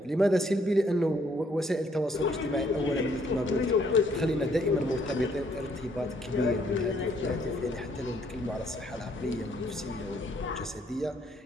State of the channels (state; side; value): normal; both; correlation 0.66